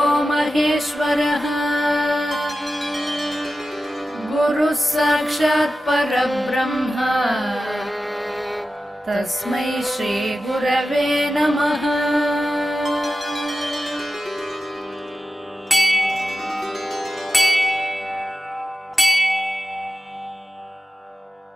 महेश्वरः गुरुः साक्षात् परब्रह्म तस्मै श्री गुरवे नमः।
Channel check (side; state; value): both; normal; correlation 0.93